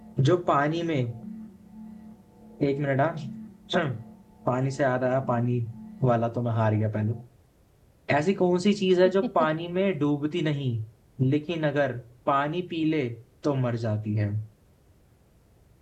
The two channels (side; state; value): both; identical; correlation 1.00